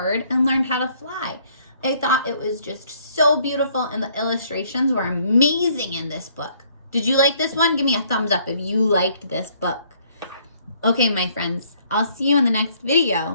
and learned how to fly. I thought it was just so beautiful and the illustrations were amazing in this book. Did you like this one? Give me a thumbs up if you liked this book. Okay, my friends, I'll see you in the next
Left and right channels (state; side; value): inverted; both; correlation -0.64